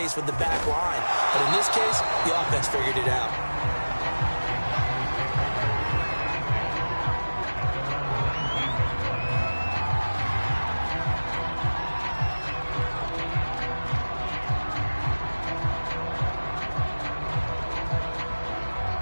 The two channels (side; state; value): both; inverted; correlation -1.00